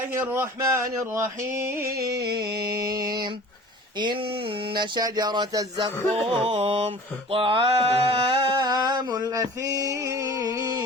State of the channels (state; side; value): normal; both; correlation 0.43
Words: الرحمن الرحيم إن شجرة الزقوم طعام